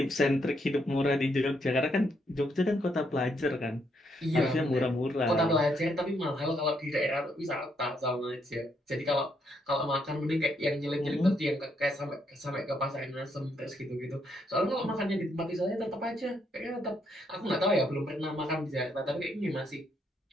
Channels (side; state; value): both; normal; correlation 0.75